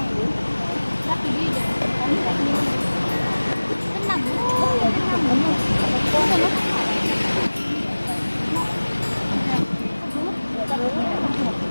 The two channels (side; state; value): both; inverted; correlation -1.00